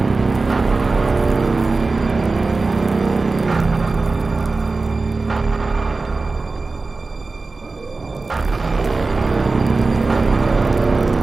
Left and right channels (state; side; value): quieter; left; 3.7 dB